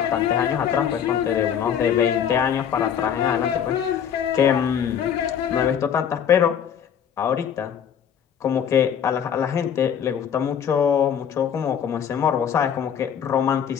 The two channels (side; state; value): right; quieter; 8.5 dB